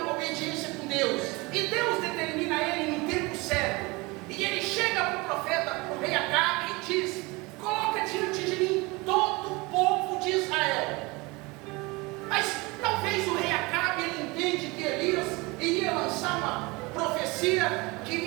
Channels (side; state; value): left; quieter; 24.7 dB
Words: com Deus. E Deus determina ele no tempo certo. E ele chega para o profeta, para o rei Acabe e diz: coloca diante de mim todo o povo de Israel. Mas talvez o rei Acabe, ele entende que Elias iria lançar uma profecia que